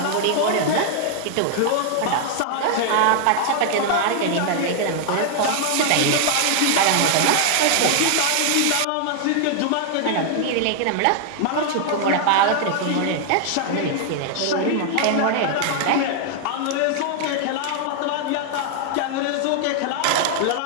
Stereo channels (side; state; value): both; different; correlation 0.00